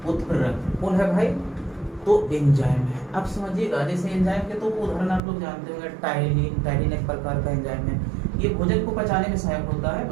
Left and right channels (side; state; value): left; drops out; at 5.2 s